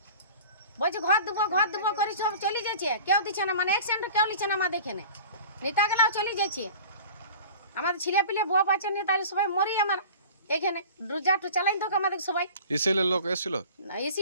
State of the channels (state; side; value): inverted; both; correlation -0.41